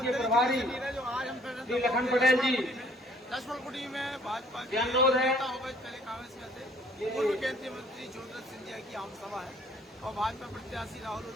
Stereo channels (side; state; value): both; normal; correlation 0.59